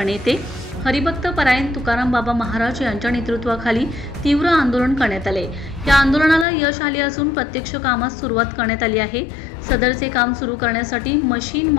हरिभक्त परायण तुकाराम बाबा महाराज यांच्या नेतृत्वाखाली तीव्र आंदोलन करण्यात आले। या आंदोलनाला यश आले असून प्रत्यक्ष कामास सुरुवात करण्यात आली आहे। सदरचे काम सुरू करण्यासाठी मशीन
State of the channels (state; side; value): drops out; right; at 6.5 s